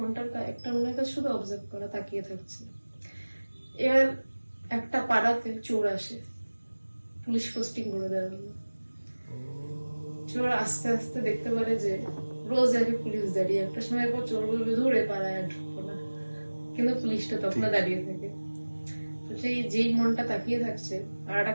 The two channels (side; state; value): both; inverted; correlation -1.00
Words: একটা মনের কাজ শুধু অবজার্ভ করা, তাকিয়ে থাকছে। এবার একটা পাড়াতে চোর আসে, পুলিশ পোস্টিং করে দেওয়া হলো। চোর আস্তে আস্তে দেখতে পারে যে রোজ আগে পুলিশ দাঁড়িয়ে, একটা সময় পর চোর বলবে ধরে পাড়ায় আর ঢুকবো না, কিন্তু পুলিশটা তখন দাঁড়িয়ে থাকে। তো সেই যেই মনটা তাকিয়ে থাকছে আর